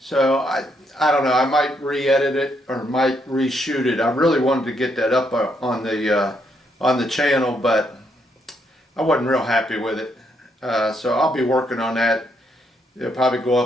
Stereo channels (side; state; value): both; normal; correlation 0.75